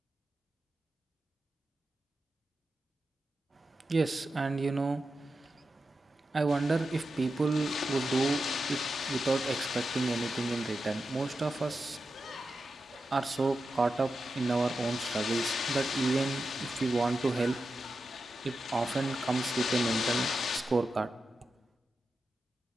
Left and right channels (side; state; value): both; normal; correlation 0.90